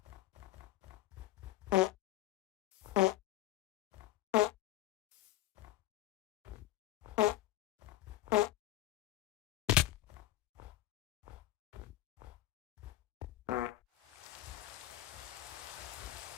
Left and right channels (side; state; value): right; quieter; 15.5 dB